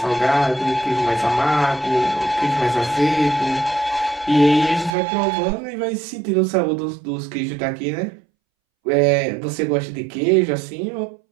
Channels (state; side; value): drops out; left; at 4.9 s